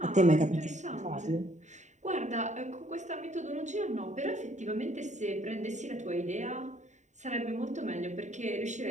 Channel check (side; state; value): left; late; 0.34 ms